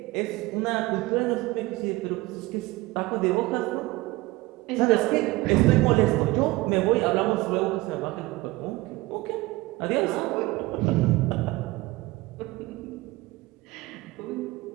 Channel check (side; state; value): left; quieter; 20.6 dB